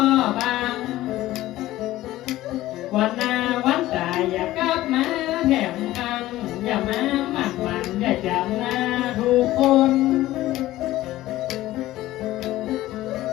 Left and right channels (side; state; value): right; quieter; 15.8 dB